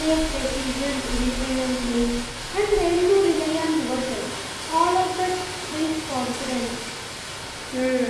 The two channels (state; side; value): identical; both; correlation 1.00